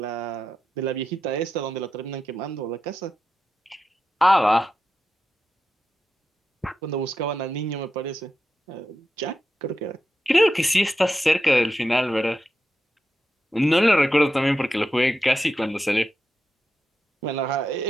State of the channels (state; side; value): normal; both; correlation 0.88